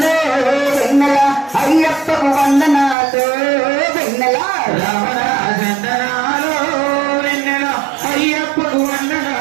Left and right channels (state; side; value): drops out; left; at 3.0 s